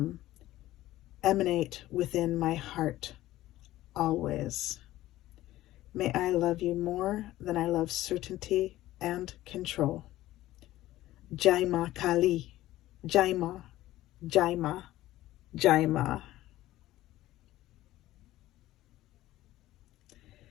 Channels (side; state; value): right; quieter; 15.5 dB